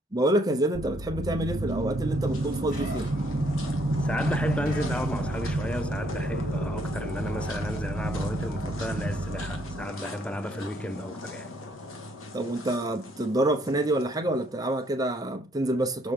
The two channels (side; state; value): both; normal; correlation 0.68